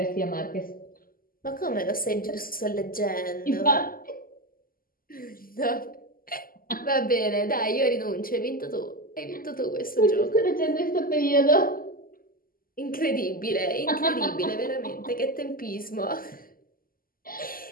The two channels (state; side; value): late; right; 0.42 ms